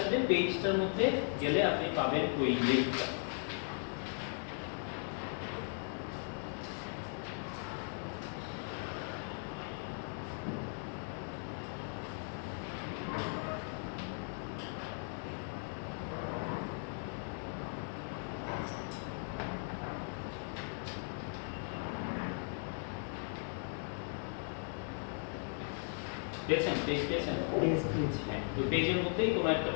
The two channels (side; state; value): right; silent; 53 dB below the other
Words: পেজটার মধ্যে গেলে আপনি পাবেন ওই লিংকটা। পেয়েছেন? পেজ পেয়েছেন? হ্যাঁ, ওই পেজের মধ্যেই কোনো একটা